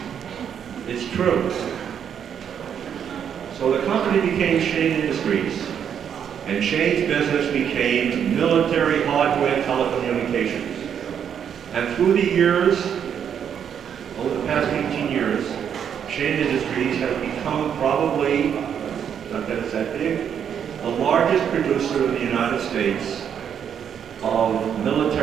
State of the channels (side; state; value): left; quieter; 8.3 dB